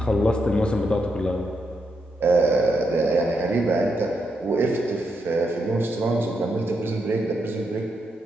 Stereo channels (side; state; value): both; normal; correlation 0.82